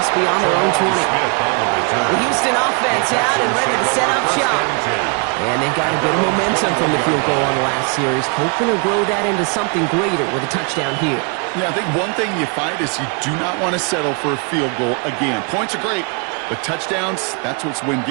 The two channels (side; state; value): left; quieter; 35.7 dB